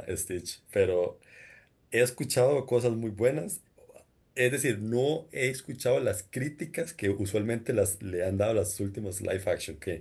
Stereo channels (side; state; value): both; identical; correlation 1.00